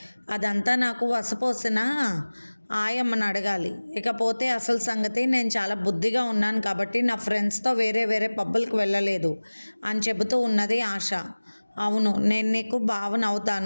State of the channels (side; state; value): both; inverted; correlation -1.00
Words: అదంతా నాకు వసపోసిన ఆయమ్మని అడగాలి. ఇకపోతే అసలు సంగతి, నేను చాలా బుద్ధిగా ఉన్నాను కాబట్టి నా ఫ్రెండ్స్తో వేరే వేరే పబ్బులకు వెళ్ళలేదు అని చెబుతూ ఉన్నది ఆశ. అవును, నేను నీకు